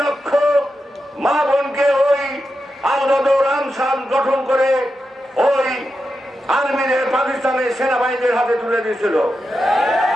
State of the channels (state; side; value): normal; both; correlation 0.89